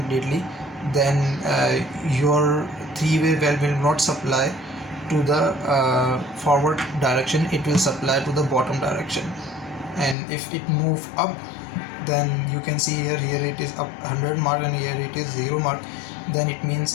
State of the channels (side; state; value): right; drops out; at 10.2 s